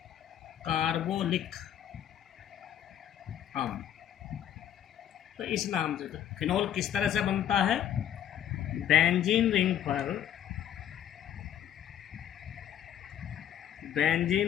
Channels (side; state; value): right; quieter; 10.3 dB